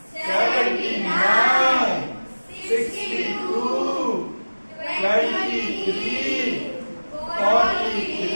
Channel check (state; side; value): inverted; both; correlation -1.00